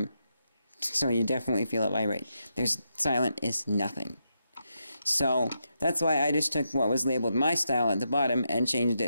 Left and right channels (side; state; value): both; inverted; correlation -0.84